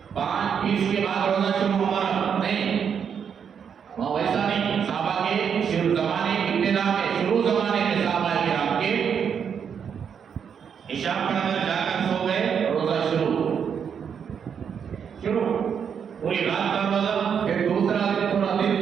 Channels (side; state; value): left; quieter; 7.4 dB